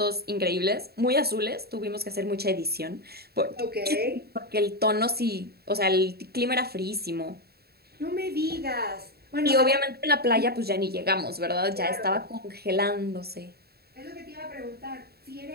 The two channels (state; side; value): late; left; 0.46 ms